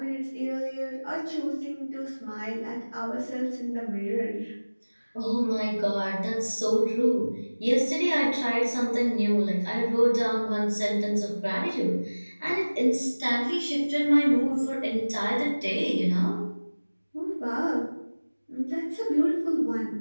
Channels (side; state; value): both; inverted; correlation -1.00